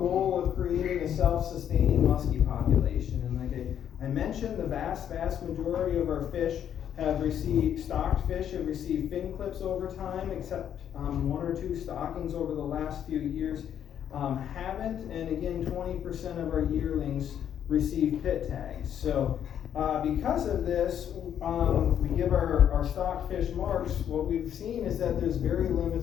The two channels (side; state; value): right; quieter; 9.5 dB